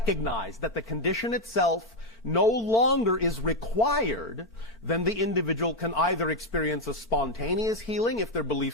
that the condition itself no longer is required, then the individual can either experience a spontaneous healing if their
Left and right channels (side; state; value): both; normal; correlation 0.05